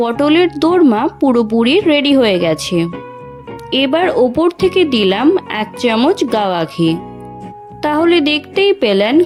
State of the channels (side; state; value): both; identical; correlation 1.00